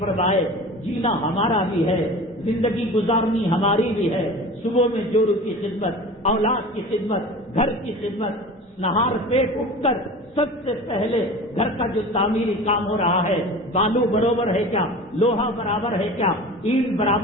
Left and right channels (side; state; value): both; normal; correlation 0.36